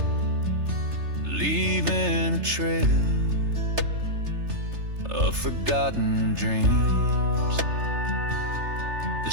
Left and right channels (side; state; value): left; late; 3.3 ms